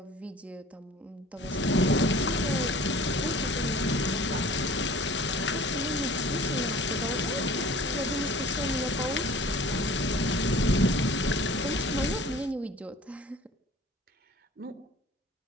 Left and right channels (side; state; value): both; normal; correlation 0.46